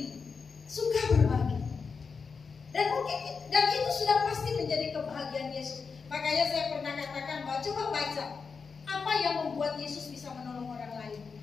suka berbagi. Dan itu sudah pasti menjadi kebahagiaan Yesus. Makanya saya pernah katakan bahwa coba baca apa yang membuat Yesus bisa menolong orang lain.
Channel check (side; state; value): right; quieter; 5.2 dB